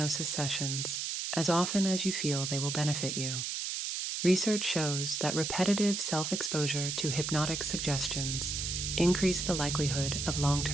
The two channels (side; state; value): right; noise; hiss, 2 dB below the sound